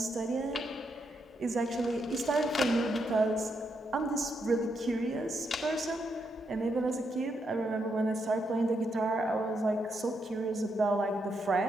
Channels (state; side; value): normal; both; correlation 0.80